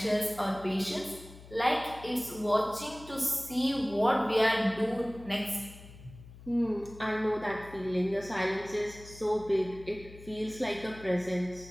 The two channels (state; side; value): noise; left; hum, 18 dB below the sound